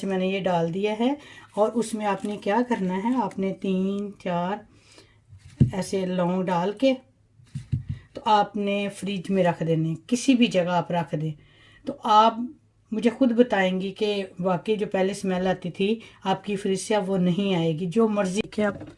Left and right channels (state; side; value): identical; both; correlation 1.00